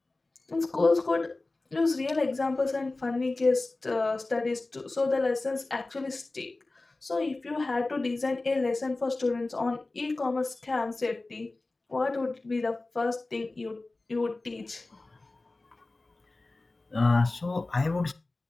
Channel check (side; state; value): right; quieter; 3.2 dB